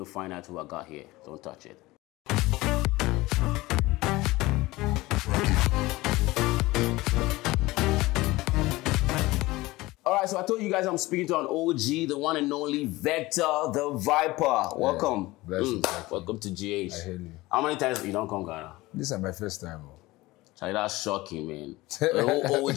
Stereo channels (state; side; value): quieter; right; 19.8 dB